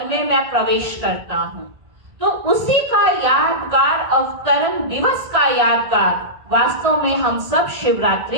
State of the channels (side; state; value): left; late; 1.6 ms